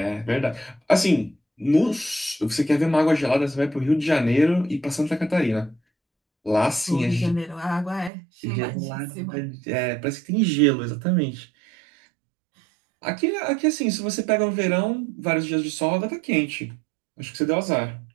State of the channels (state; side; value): drops out; left; at 8.1 s